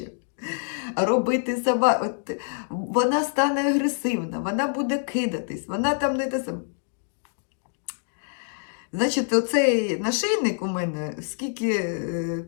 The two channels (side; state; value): right; silent; digital silence